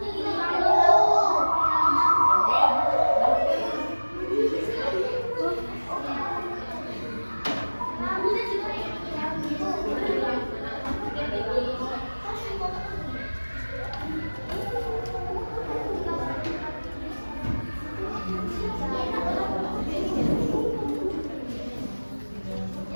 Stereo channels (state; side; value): inverted; both; correlation -1.00